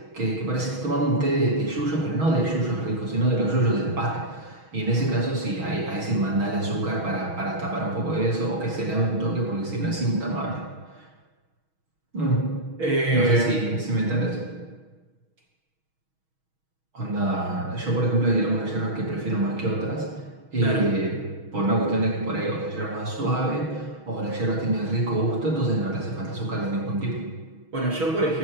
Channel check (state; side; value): late; left; 6.3 ms